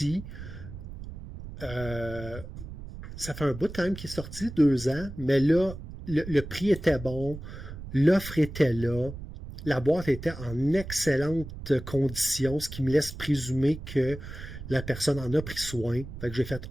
ça fait un bout quand même qui est sorti, 2 ans, mais là, le prix était bon, l'offre était là, la boîte était en excellente condition, ce qui me laisse présumer que la personne en a pris soin. Fait que j'ai fait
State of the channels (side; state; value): right; noise; rumble, 11 dB below the sound